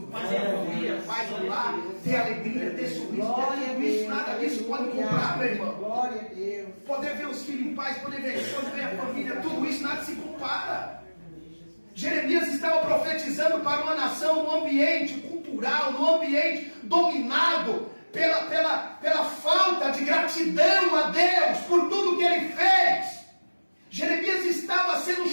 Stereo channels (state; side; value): inverted; both; correlation -1.00